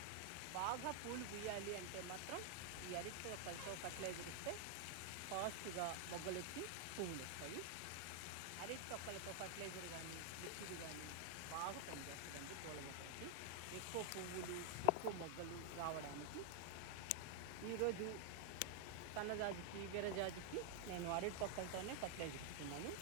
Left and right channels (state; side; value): different; both; correlation 0.00